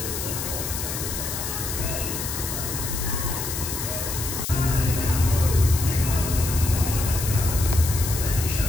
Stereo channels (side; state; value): left; noise; hiss, 5 dB below the sound